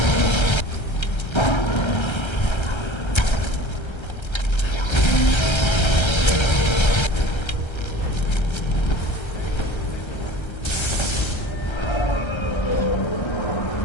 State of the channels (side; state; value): right; late; 1.3 ms